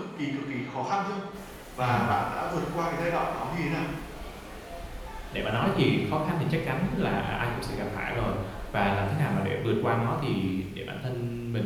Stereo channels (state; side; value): identical; both; correlation 1.00